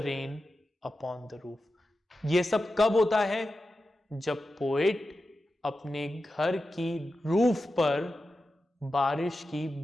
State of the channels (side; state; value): both; normal; correlation 0.92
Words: rain upon the roof. ये सब कब होता है, जब पोएट अपने घर की रूफ पर बारिश की